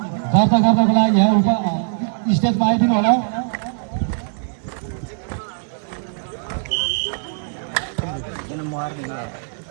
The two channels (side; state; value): left; silent; 63 dB below the other